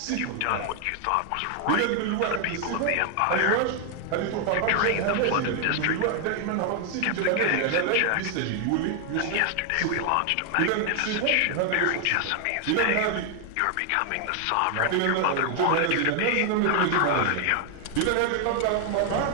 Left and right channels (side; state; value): both; different; correlation 0.00